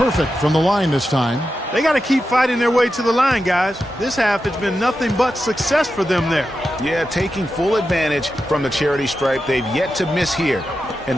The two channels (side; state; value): both; normal; correlation 0.90